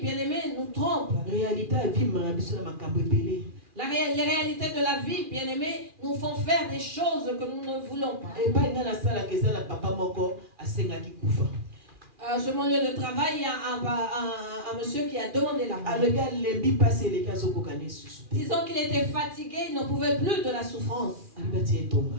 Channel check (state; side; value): late; left; 2.4 ms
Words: bien aimés, nous trompent. Les réalités de la vie, bien aimés, nous font faire des choses que nous ne voulons pas. Sur mon lieu de travail, il y a un monsieur qui a demandé la mort. Disons qu'il était fatigué, il n'en pouvait plus de la souffrance.